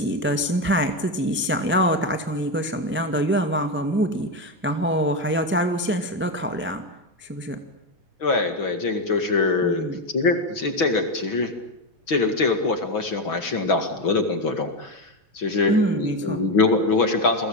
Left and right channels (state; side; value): normal; both; correlation 0.11